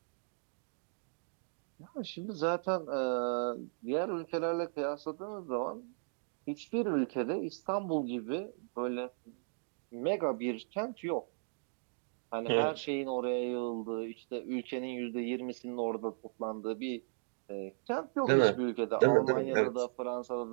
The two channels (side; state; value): left; silent; digital silence